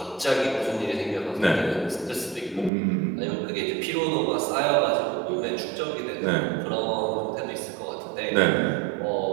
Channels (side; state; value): left; drops out; at 2.7 s